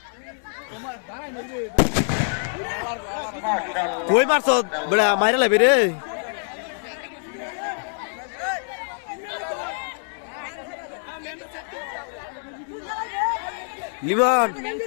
মাশাআল্লাহ। কই মারছ বড়া মাইরা লাইবে রে লিমন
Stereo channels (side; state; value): right; silent; 62 dB below the other